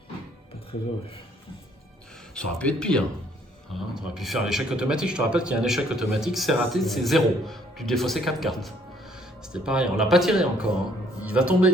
une. Pas très heureux. Ça aurait pu être pire. Hein, tu aurais pu faire l'échec automatique. Je te rappelle qu'il y a un échec automatique, c'est raté, c'est 0. Tu défaussais 4 cartes. C'était pareil, on l'a pas tiré encore. Hein. Il va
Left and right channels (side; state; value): both; normal; correlation 0.64